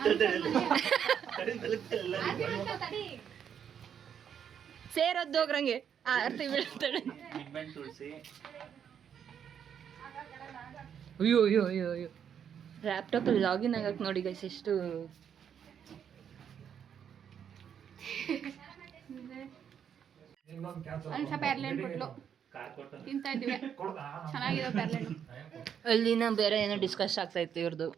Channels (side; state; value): left; quieter; 8.3 dB